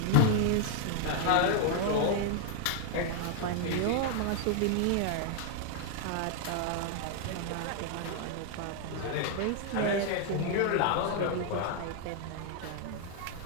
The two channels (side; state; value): both; different; correlation 0.00